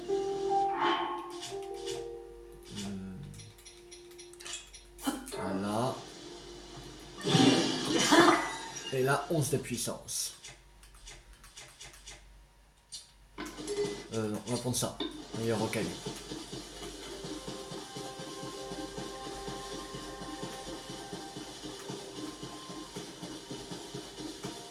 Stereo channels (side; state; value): both; identical; correlation 1.00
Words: Voilà. Et là, 11 de puissance. Non, on va prendre ça. Meilleur rocaille.